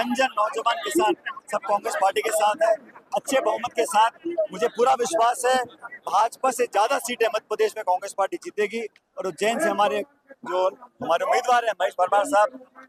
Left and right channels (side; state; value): both; identical; correlation 1.00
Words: जन नौजवान किसान सब कांग्रेस पार्टी के साथ है। अच्छे बहुमत के साथ मुझे पूरा विश्वास है भाजपा से ज्यादा सीटें मध्य प्रदेश में कांग्रेस पार्टी जीतेगी। और उज्जैन से हमारे उम्मीदवार हैं महेश परमार साहब,